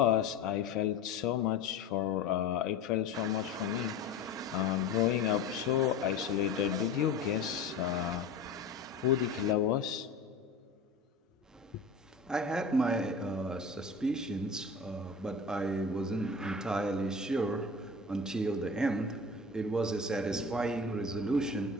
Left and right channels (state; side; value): quieter; right; 3.5 dB